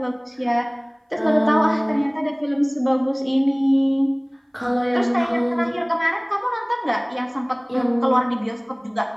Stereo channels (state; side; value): identical; both; correlation 1.00